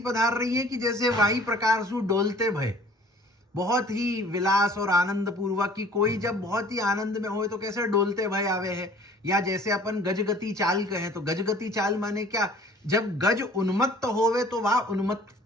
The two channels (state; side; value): normal; both; correlation 0.50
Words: पधार रही है कि जैसे वही प्रकार सु डोलते भय, बहुत ही विलास और आनंद पूर्वक की कोई जब बहुत ही आनंद में होए तो कैसे डोलते भय आवे है। या जैसे अपन गजगति चाल कहें तो गजगति चाल माने क्या, जब गज उन्मत्त होवे तो वह